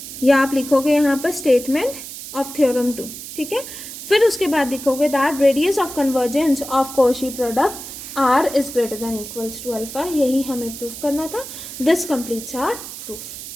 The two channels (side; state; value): right; noise; hiss, 11 dB below the sound